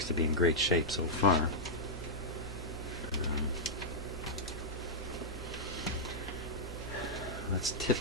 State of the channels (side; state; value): left; noise; rumble, 17 dB below the sound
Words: to be in great shape so far. Let's